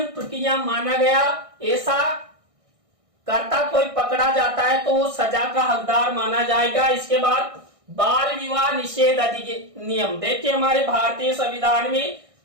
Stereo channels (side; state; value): left; late; 1.6 ms